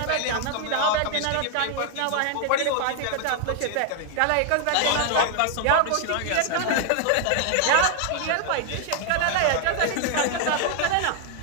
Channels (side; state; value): both; different; correlation 0.00